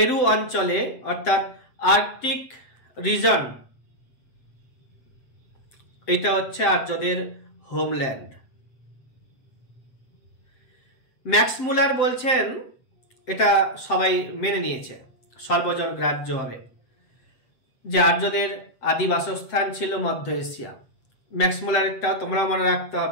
অঞ্চলে অর্থাৎ আর্কটিক রিজন, এটা হচ্ছে আর্যদের হোমল্যান্ড। ম্যাক্স মুলার বলছেন এটা সবাই মেনে নিয়েছে সর্বজন গ্রাহ্যভাবে, যে আর্যদের আদি বাসস্থান ছিল মধ্য এশিয়া। ম্যাক্স মুলারটা তোমরা মনে রাখতে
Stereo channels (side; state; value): right; late; 7.8 ms